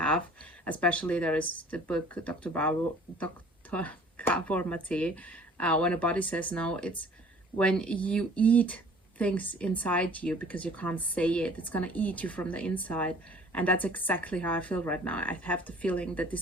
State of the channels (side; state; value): both; normal; correlation 0.51